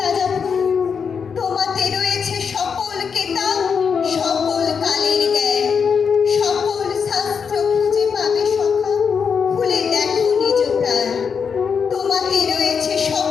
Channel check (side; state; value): right; quieter; 6.3 dB